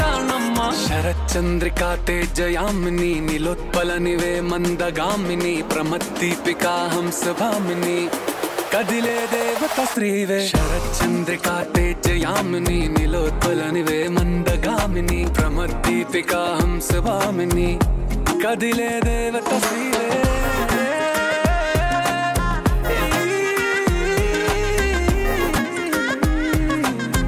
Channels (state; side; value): identical; both; correlation 1.00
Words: శరచంద్రికా తేజయామిని నిలోత్పలనివే మందగామిని ప్రమద్దీపికా హంసభామిని కదిలే దేవత స్త్రీవే శరచంద్రికా తేజయామిని నిలోత్పలనివే మందగామిని ప్రమద్దీపికా హంసభామిని కదిలే దేవత స్త్రీవే